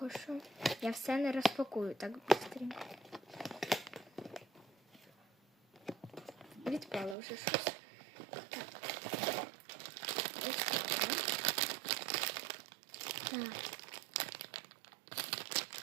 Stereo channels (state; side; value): drops out; left; at 7.2 s